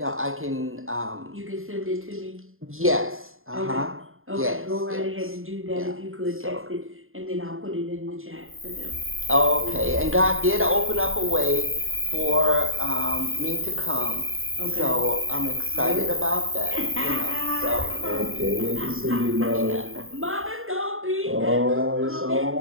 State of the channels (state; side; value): late; left; 0.61 ms